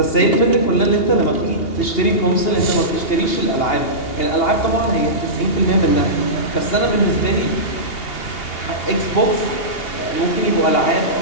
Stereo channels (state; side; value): late; right; 2.8 ms